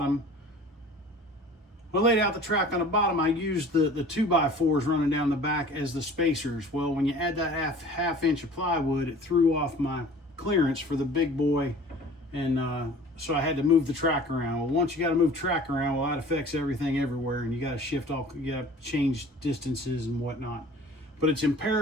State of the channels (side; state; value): both; normal; correlation 0.45